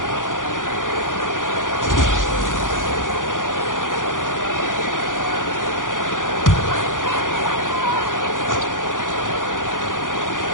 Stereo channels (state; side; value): late; right; 0.88 ms